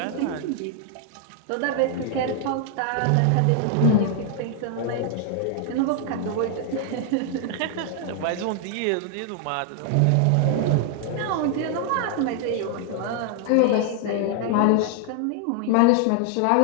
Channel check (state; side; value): different; both; correlation 0.00